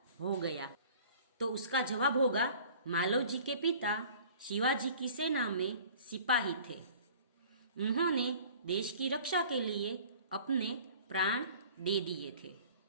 हो गया? तो उसका जवाब होगा, मालवजी के पिता शिवाजी की सेना में सिपाही थे। उन्होंने देश की रक्षा के लिए अपने प्राण दे दिए थे।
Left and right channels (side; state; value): both; inverted; correlation -0.48